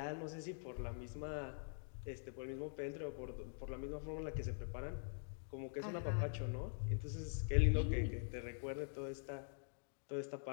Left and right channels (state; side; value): silent; right; digital silence